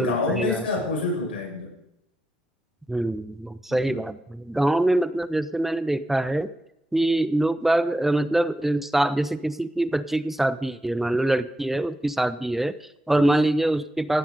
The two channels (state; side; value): normal; both; correlation 0.87